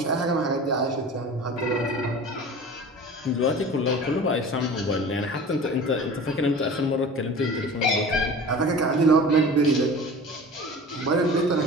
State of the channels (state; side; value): normal; both; correlation 0.38